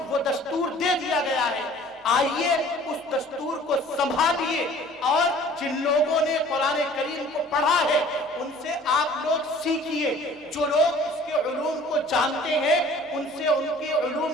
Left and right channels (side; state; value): both; normal; correlation 0.50